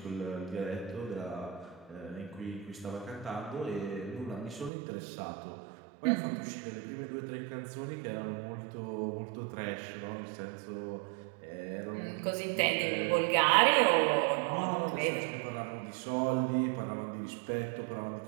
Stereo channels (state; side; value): drops out; left; at 4.7 s